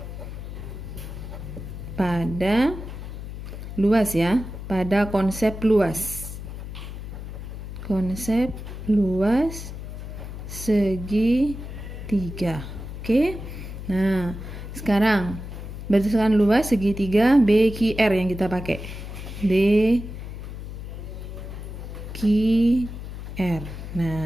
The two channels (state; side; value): noise; left; hum, 9 dB below the sound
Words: pada luas ya, pada konsep luas. Konsep luas segitiga. Oke. Nah, sekarang berdasarkan luas segitiga BQR yang kita pakai. BQR.